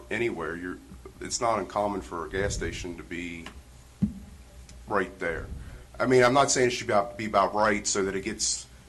anywhere, it's not uncommon for a gas station to be right there. I mean, I'm not saying it should be about right so that it gets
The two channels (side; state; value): both; identical; correlation 1.00